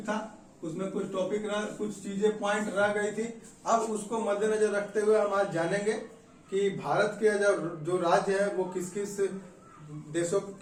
था उसमें, कुछ चीजें पॉइंट रह गई थी। अब उसको मद्देनजर रखते हुए हम आज जानेंगे कि भारत के जो राज्य है वो किस किस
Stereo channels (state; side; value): identical; both; correlation 1.00